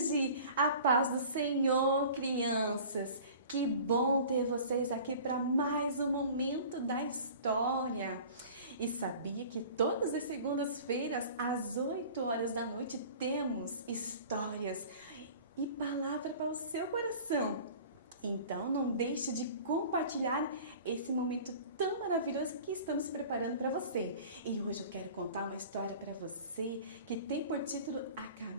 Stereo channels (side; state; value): both; inverted; correlation -0.43